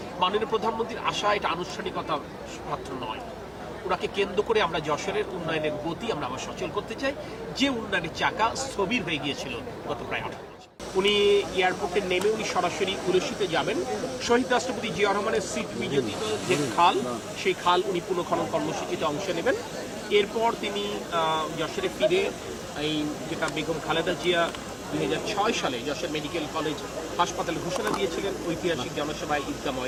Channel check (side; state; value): both; identical; correlation 1.00